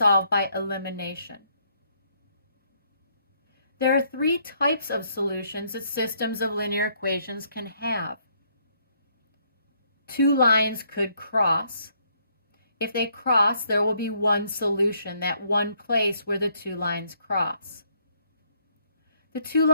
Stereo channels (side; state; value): both; inverted; correlation -0.70